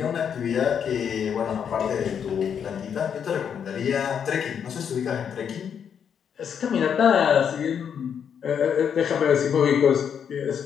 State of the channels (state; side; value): quieter; right; 7.8 dB